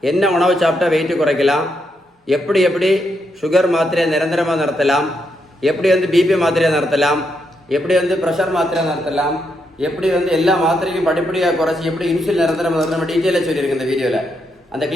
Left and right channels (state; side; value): normal; both; correlation 0.80